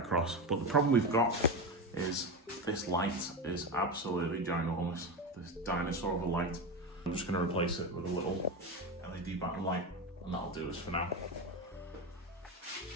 But the problem we've got is this light is absolutely ginormous. This dinosaur of a light. I'm just going to replace it with a little LED backlight light, and that'll do us for now.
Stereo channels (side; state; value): both; normal; correlation 0.18